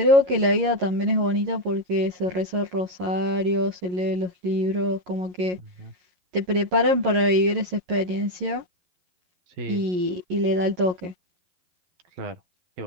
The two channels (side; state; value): left; late; 11 ms